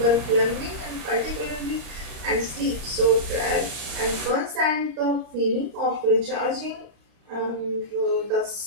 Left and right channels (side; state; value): left; late; 35 ms